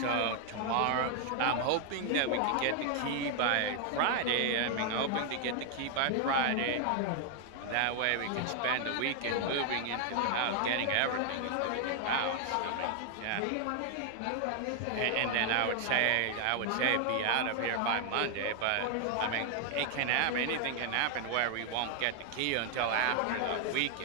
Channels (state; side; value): different; both; correlation 0.00